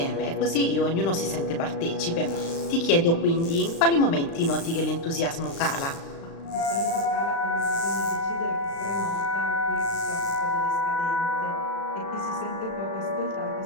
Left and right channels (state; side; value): late; right; 36 ms